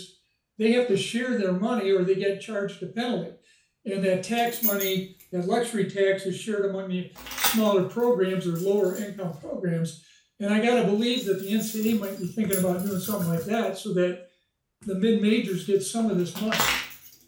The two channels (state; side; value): identical; both; correlation 1.00